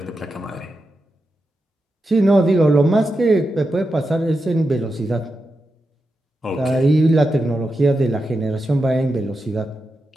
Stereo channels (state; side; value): normal; both; correlation 0.88